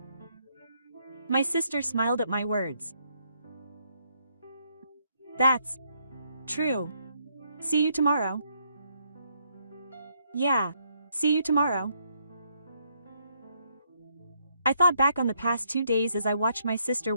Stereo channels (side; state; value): both; inverted; correlation -0.73